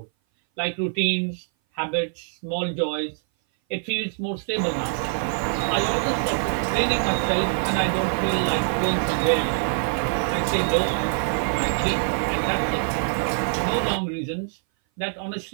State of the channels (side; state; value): left; silent; 58 dB below the other